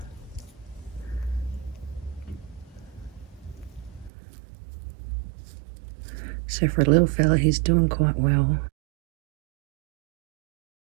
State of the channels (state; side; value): drops out; left; at 4.1 s